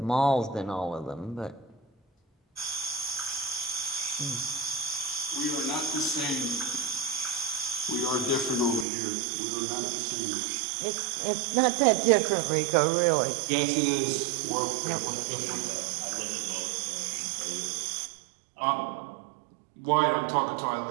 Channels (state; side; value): drops out; left; at 8.8 s